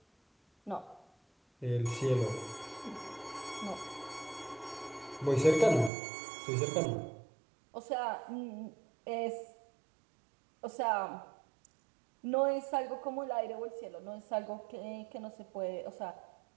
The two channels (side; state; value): left; drops out; at 5.9 s